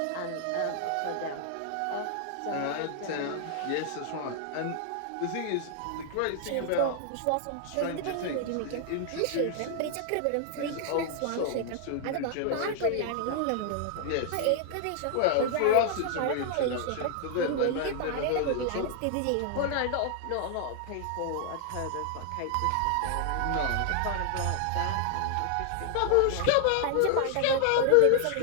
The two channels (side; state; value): both; different; correlation 0.00